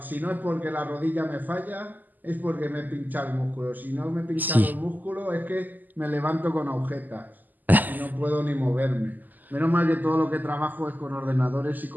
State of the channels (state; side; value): late; left; 0.085 ms